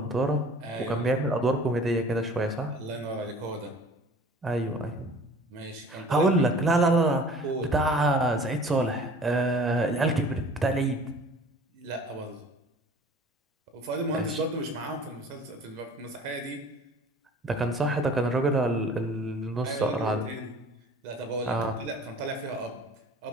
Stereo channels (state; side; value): normal; both; correlation 0.47